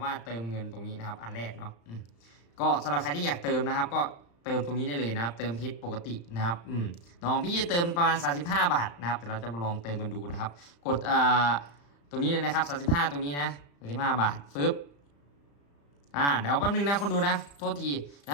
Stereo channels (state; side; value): late; right; 35 ms